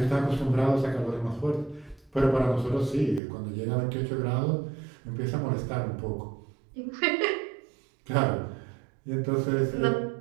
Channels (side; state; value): left; drops out; at 3.2 s